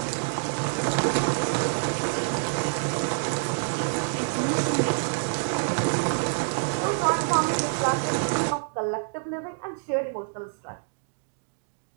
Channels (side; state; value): left; silent; digital silence